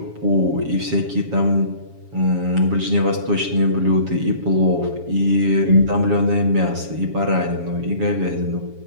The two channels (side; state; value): left; late; 7.2 ms